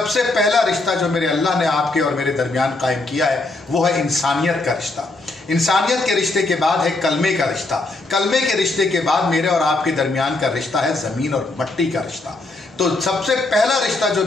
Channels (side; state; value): right; quieter; 3.1 dB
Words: पहला रिश्ता जो मेरे अल्लाह ने आपके और मेरे दरमियान कायम किया है वो है इंसानियत का रिश्ता। इंसानियत के रिश्ते के बाद है कलमे का रिश्ता, कलमे के रिश्ते के बाद मेरे और आपके दरमियान का रिश्ता है ज़मीन और मिट्टी का रिश्ता। तो सबसे पहला रिश्ता जो